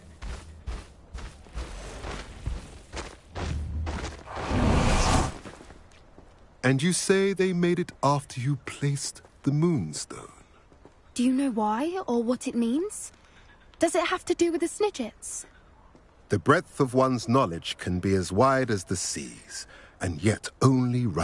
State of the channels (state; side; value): identical; both; correlation 1.00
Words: And you say they made it after you placed the Moonstone? Do you know why, or what it means? Does it have to do with the Snidgets? The breadth of one's knowledge can be as wide as the seas, and yet only